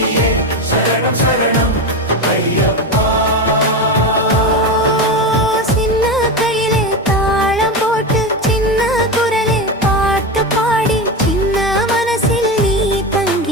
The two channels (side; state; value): both; normal; correlation 0.18